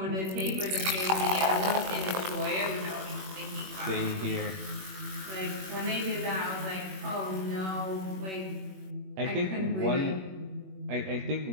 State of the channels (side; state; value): left; late; 21 ms